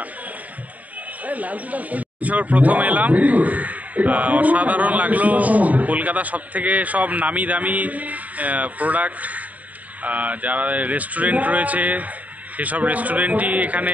প্রথম এলাম, অসাধারণ লাগলো। কলকাতা সব নামি দামি প্রোডাক্ট, যারা রেস্টুরেন্ট রয়েছে সেসব রেস্টুরেন্টই এখানে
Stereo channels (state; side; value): late; left; 0.074 ms